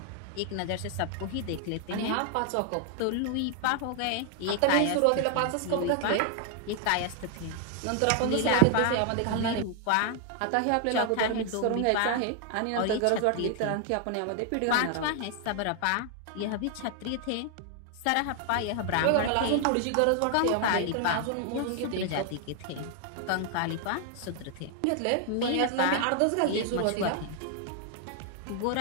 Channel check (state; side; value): different; both; correlation 0.00